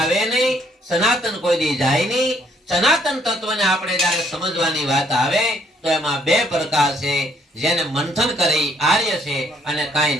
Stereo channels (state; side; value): normal; both; correlation 0.66